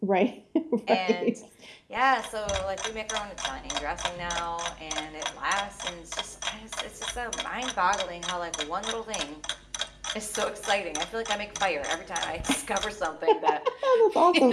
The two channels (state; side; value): identical; both; correlation 1.00